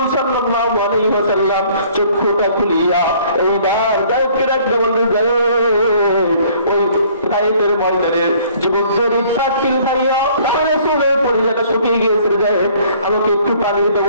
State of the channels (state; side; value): inverted; both; correlation -0.57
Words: সাল্লাল্লাহু আলাইহি ওয়াসাল্লাম চোখটা খুলিয়া এইবার গায়েবকে ডাকতে বললেন, গায়েব, তাইফের ময়দানের যুবকদের ইফতার খাইয়া রাসূলের পরিজাটা শুকিয়ে গিয়েছে, যায় আমাকে একটু পানির